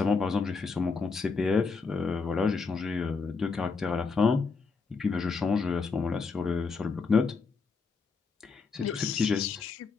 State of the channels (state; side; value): quieter; right; 4.7 dB